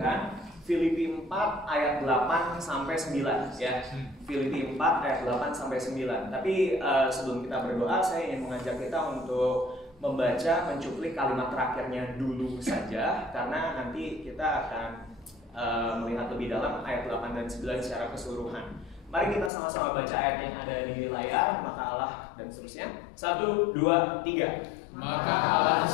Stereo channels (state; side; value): drops out; right; at 19.5 s